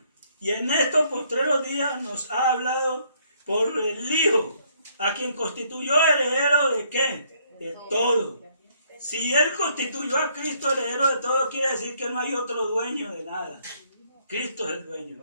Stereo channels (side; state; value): both; inverted; correlation -0.68